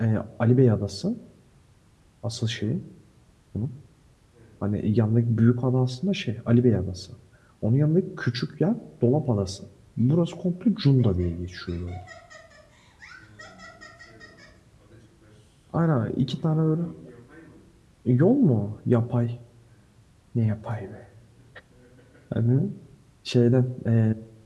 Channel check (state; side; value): identical; both; correlation 1.00